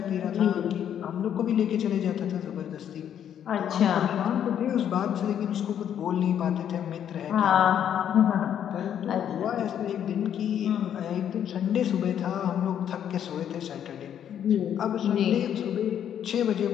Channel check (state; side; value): quieter; right; 9.5 dB